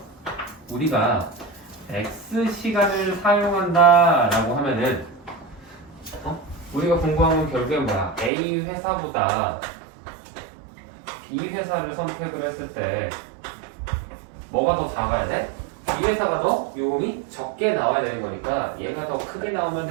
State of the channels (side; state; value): left; drops out; at 8.3 s